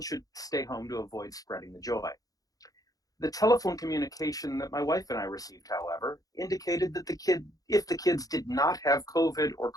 should stay home to avoid spreading the joy. The telephone communication that my wife and I received, however, indicated that if the kids did not have COVID or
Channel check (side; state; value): right; late; 0.17 ms